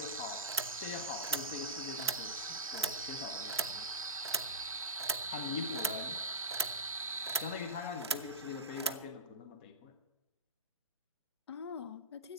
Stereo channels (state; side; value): normal; both; correlation -0.14